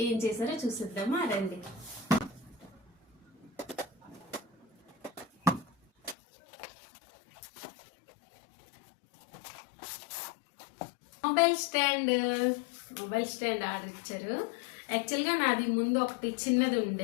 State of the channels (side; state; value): right; drops out; at 6.2 s